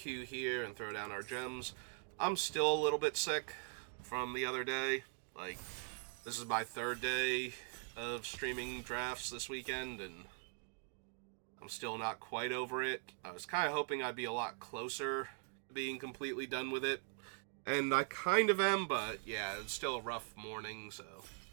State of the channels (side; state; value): left; silent; 50 dB below the other